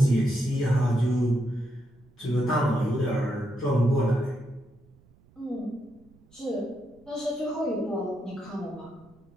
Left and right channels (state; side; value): noise; right; rumble, 29 dB below the sound